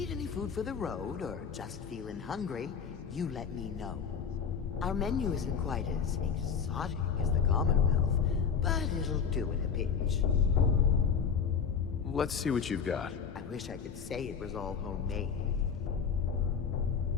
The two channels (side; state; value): right; quieter; 6.7 dB